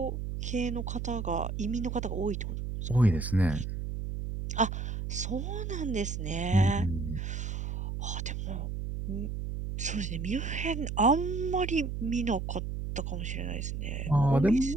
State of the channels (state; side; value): noise; right; hum, 4 dB below the sound